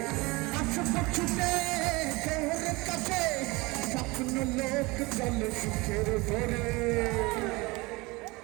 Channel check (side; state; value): left; quieter; 24.0 dB